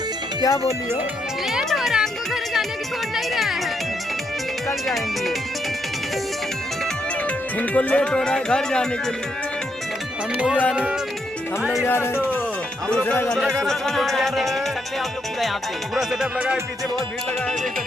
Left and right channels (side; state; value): both; normal; correlation 0.78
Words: क्या बोली हो? लेट हो रहा है, हमको घर जाने की छोड़ नहीं रहा है। कल जाएंगे। इनको लेट हो रहा है घर जाने के लिए। हम लोग जा रहे हैं। दूसरा गाना आप लोग पूरा यहाँ पे पूरा सेटअप लगा है, पीछे बहुत भीड़ लगा है, देख